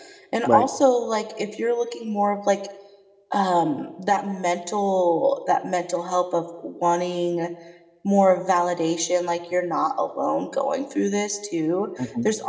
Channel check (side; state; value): both; identical; correlation 1.00